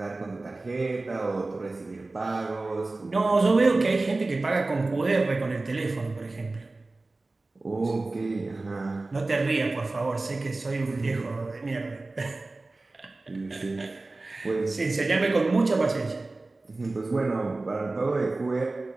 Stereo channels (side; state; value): left; quieter; 3.2 dB